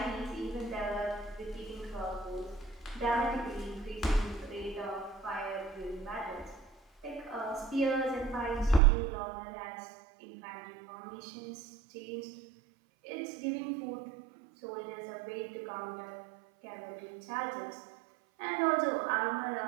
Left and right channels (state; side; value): drops out; left; at 8.8 s